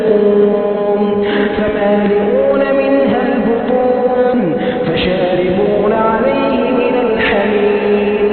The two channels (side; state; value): both; identical; correlation 1.00